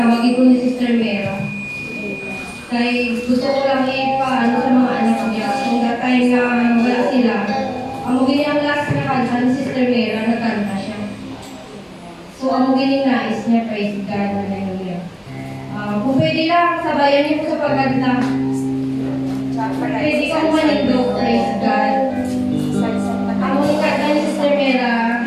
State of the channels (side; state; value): both; identical; correlation 1.00